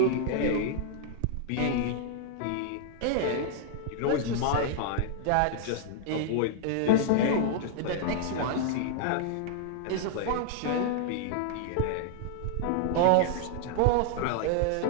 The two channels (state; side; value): different; both; correlation -0.01